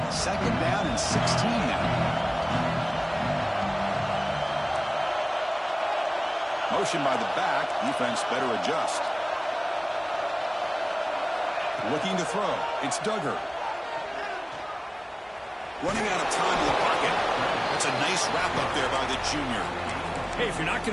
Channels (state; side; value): identical; both; correlation 1.00